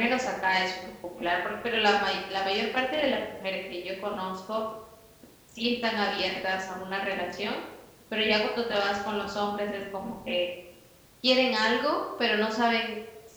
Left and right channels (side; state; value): both; identical; correlation 1.00